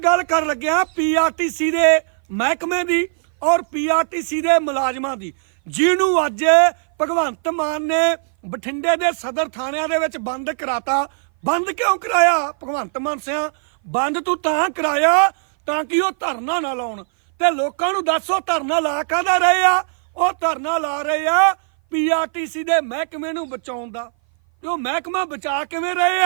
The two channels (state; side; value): silent; left; 58 dB below the other